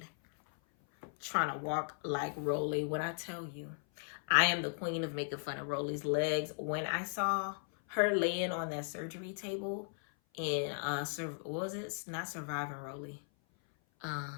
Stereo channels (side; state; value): right; silent; 53 dB below the other